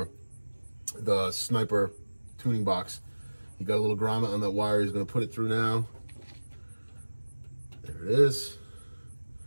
the Sniper tuning box. He got a little grommet on that wire. He's going to put it through now. There it is.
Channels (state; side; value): inverted; both; correlation -1.00